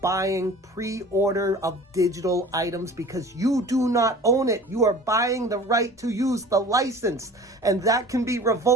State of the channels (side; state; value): both; normal; correlation 0.42